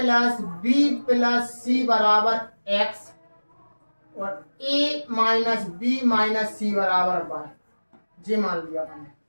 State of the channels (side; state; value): both; inverted; correlation -1.00